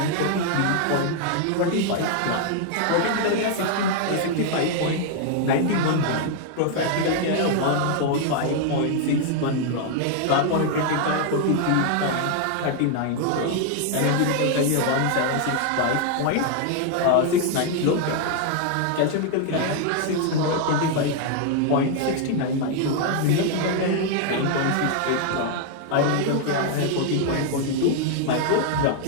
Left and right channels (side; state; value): both; different; correlation 0.00